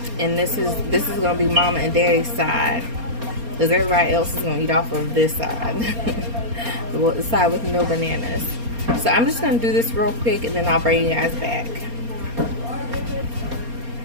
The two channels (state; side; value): late; left; 4.3 ms